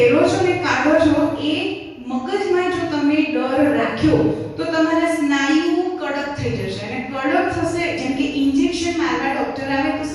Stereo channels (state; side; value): identical; both; correlation 1.00